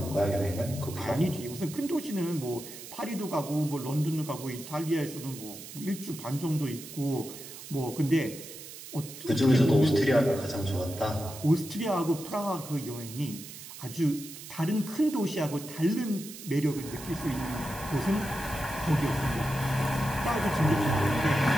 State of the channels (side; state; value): right; noise; hiss, 13 dB below the sound